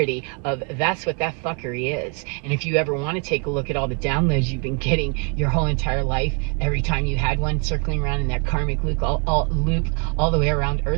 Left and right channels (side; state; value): left; quieter; 37.7 dB